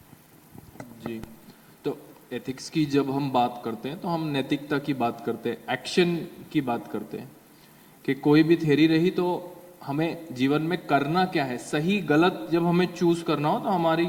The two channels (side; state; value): both; identical; correlation 1.00